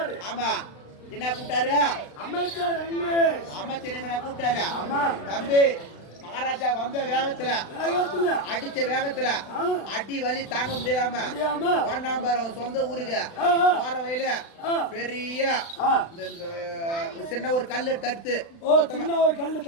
ஆமா என்ன கூப்பிட்டாரு அமைச்சர் அமைச்சர் என்ன கூப்பிட்டாரு. ஆமா தம்பி மகாராஜா வந்த வேகத்துல அடிச்ச வேகத்துல அடி வலி தாங்க முடியாம ஒன்னாம்பர் அவன் சொந்த ஊருக்கு போற வயல பெரிய சின்ன ஒரு கல்லு தடுத்து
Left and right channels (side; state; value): right; late; 36 ms